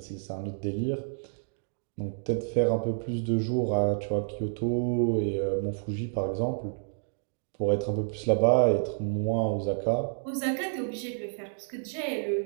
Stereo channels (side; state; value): left; silent; digital silence